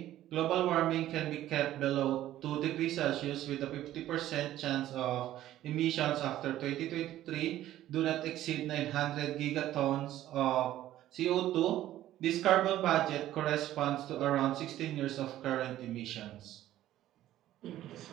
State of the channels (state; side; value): quieter; left; 13.5 dB